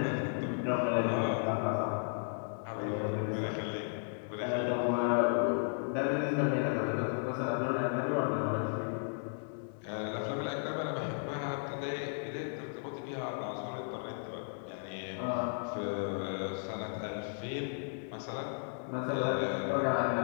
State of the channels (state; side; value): silent; right; digital silence